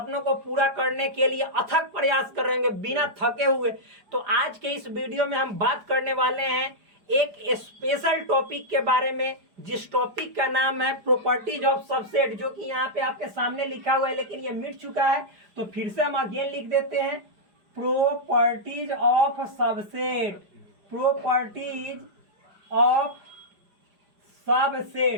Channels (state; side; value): late; left; 4.9 ms